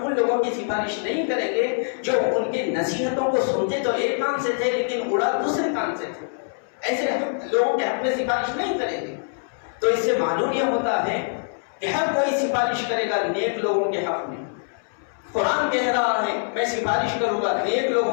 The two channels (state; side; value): silent; right; 63 dB below the other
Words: ان لوگوں کی سفارش نہیں کریں گے جو ان کے نصیحتوں کو سنتے تو ایک کان سے تھے لیکن اڑا دوسرے کان سے تھے، ایسے لوگوں کے حق میں سفارش نہیں کریں گے۔ تو اس سے معلوم یہ ہوتا ہے کہ ہر کوئی سفارش کرے گا نیک لوگوں کے حق میں۔ قرآن کہہ رہا ہے میں سفارش کروں گا نیک